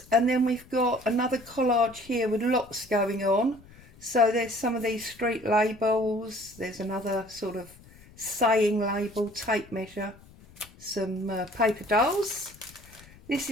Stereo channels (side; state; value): left; noise; rumble, 23 dB below the sound